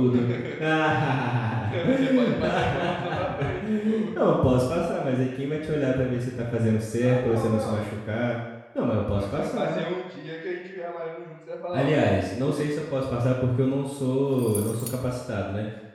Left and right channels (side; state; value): both; identical; correlation 1.00